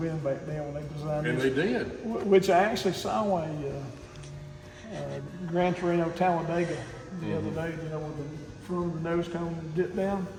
back then when they designed And this. they did. Which I actually saw a Gran Torino Talladega the other day, you know, with the front of the nose cone dipped down.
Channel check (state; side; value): identical; both; correlation 1.00